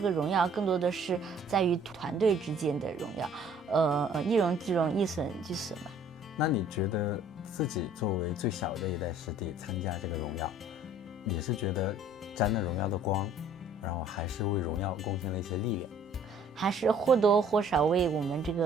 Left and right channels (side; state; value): both; normal; correlation 0.56